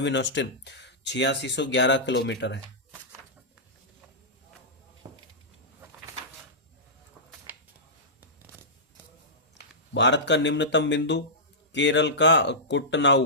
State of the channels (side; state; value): both; normal; correlation -0.14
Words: ऑस्टिन 8611 किलोमीटर है। भारत का निम्नतम बिंदु केरल का